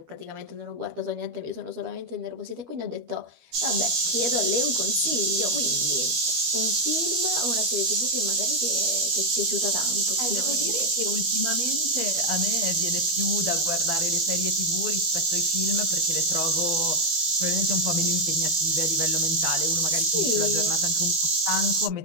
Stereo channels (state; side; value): late; left; 13 ms